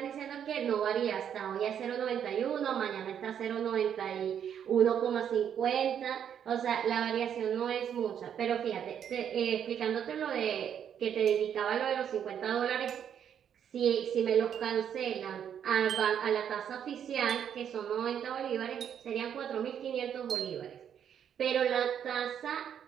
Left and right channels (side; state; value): left; quieter; 8.8 dB